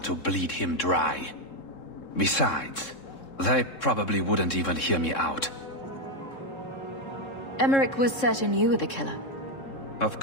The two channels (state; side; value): late; right; 3.7 ms